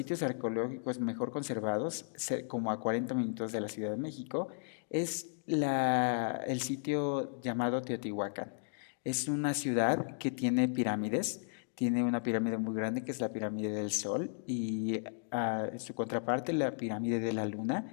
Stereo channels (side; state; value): right; silent; digital silence